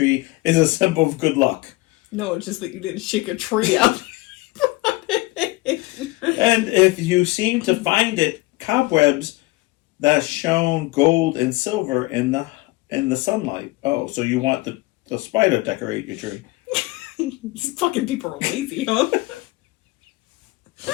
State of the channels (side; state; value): right; quieter; 21.3 dB